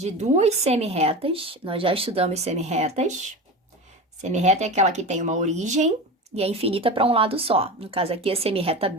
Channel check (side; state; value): both; normal; correlation 0.27